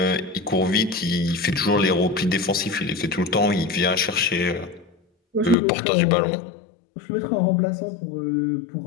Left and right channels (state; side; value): drops out; right; at 5.6 s